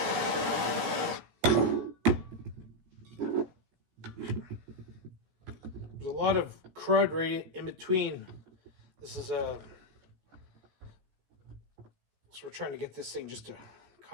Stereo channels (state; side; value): late; left; 16 ms